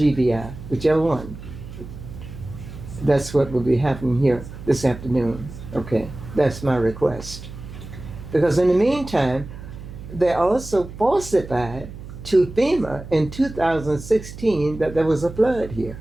whichever one. That's what will be happening here this afternoon, okay? That's my request. Because in the meantime, they also falsified to FEMA in 2016 that there was a flood here,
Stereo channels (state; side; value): noise; right; hum, 13 dB below the sound